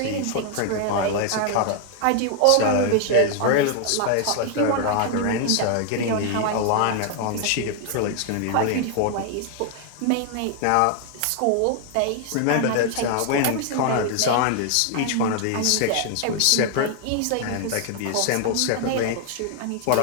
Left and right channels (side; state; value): both; different; correlation 0.00